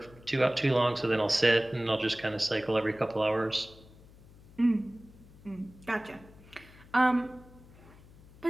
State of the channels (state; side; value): noise; left; hum, 23 dB below the sound